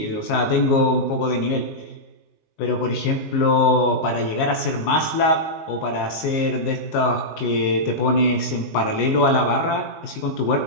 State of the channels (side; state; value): right; late; 19 ms